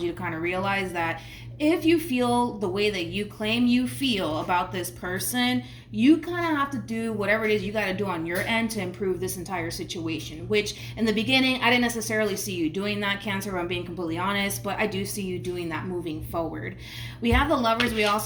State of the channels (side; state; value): both; identical; correlation 1.00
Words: you to kind of realize that if you feel the way that you claim you feel about this person, you kind of have to do whatever it is you got to do on your end to improve this entire situation, which in the beginning, I didn't necessarily see you doing that, Cancer, if I'm being completely honest, but I do see you doing that moving forward. We have the Lovers. We